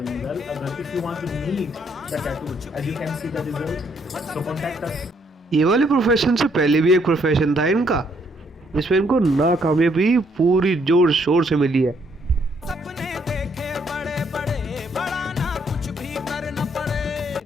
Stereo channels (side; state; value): both; normal; correlation 0.70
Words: ये वाले प्रोफेशन से पहले भी एक प्रोफेशन था इनका, जिसमें इनको नाकामयाबी पूरी जोर शोर से मिली है।